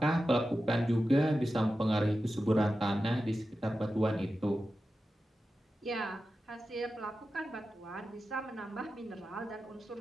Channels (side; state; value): both; normal; correlation 0.92